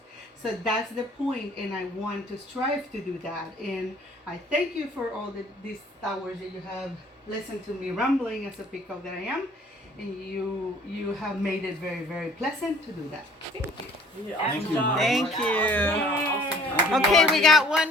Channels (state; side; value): normal; both; correlation 0.54